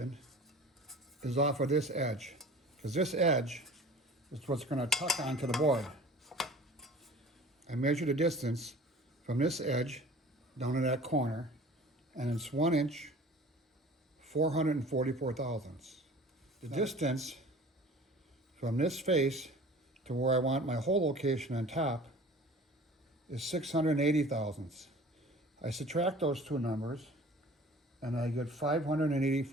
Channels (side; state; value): both; normal; correlation 0.45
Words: is off of this edge, because this edge is what's going to tuck onto the board. I measure the distance from this edge down to that corner, and it's 1 inch, 444 thousandths. The distance from this face to where I want my hole location on top is 680 thousandths. I subtract those two numbers and I get